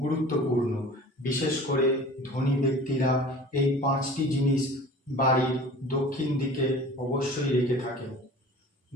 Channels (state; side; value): normal; both; correlation 0.42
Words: গুরুত্বপূর্ণ, বিশেষ করে ধনী ব্যক্তিরা এই পাঁচটি জিনিস বাড়ির দক্ষিণ দিকে অবশ্যই রেখে থাকেন।